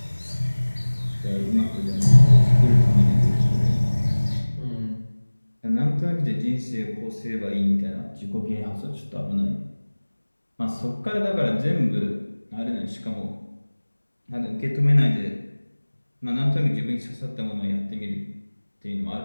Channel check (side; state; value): both; inverted; correlation -1.00